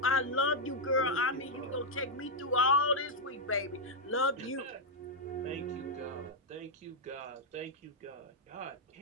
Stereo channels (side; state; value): both; normal; correlation -0.03